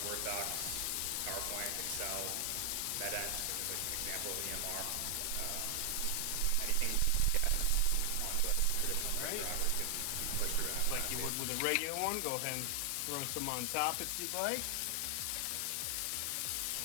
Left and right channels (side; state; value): both; different; correlation 0.00